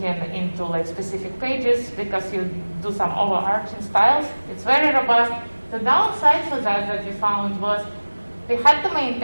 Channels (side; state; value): both; inverted; correlation -1.00